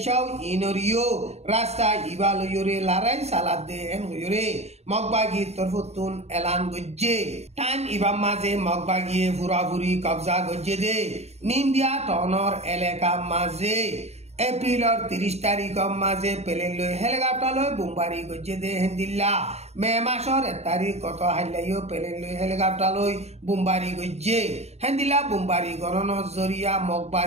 সৌ ইনরিও রাস্তা ইবালয়রে লারাই সালাদ দে এন হইরে মগবাগি তরফতুন এলান গজ্জে টাইম ইবাম মাঝে মগবাগিয়ে ফুরাফুরি কবজা গজ্জে দে নিন্দিয়া টনর এলাকা মাঝে এপ্রিলর 30 তারিখ মাঝে পেলে লই হেলিকপ্টার লই বোমবারি গজ্জে দে হেন্দিল্লা মে মাসর 1 তারিখ কত হাইলাইও পেলে লই হেলিকপ্টার লই বোমবারি গজ্জে হেন্দিল্লা বোমবারি গরণ জরিয়া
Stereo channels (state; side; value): late; left; 0.31 ms